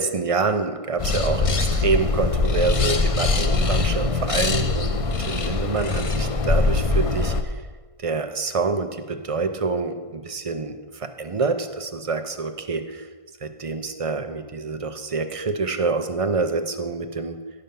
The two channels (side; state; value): left; late; 1.5 ms